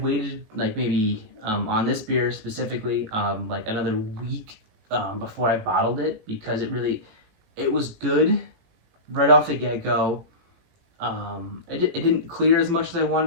waited like maybe on this beer specifically like another week before I bottled it, because it was good right off the get-go. It didn't clear as much as I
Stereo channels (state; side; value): late; left; 18 ms